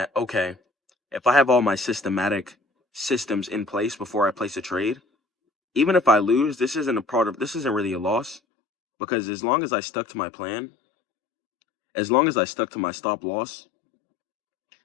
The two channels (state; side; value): drops out; right; at 8.4 s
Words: okay, if I have all my systematic systems in place before I place a trade, even if I lose, this isn't really a loss, because as long as I stuck to my plan, as long as I stuck to my stop loss,